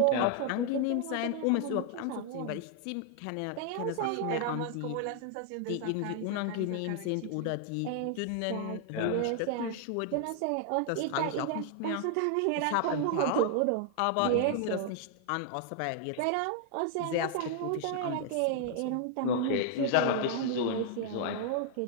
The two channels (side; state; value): both; different; correlation 0.00